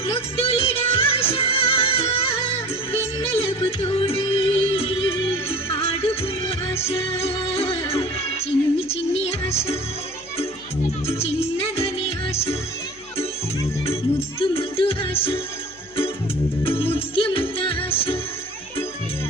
ముద్దులిడ ఆశ వెన్నెలకు తోడై ఆడుకును ఆశ చిన్ని చిన్ని ఆశ చిన్నదని ఆశ ముద్దు ముద్దు ఆశ ముత్యమంత ఆశ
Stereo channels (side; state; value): left; noise; hum, 26 dB below the sound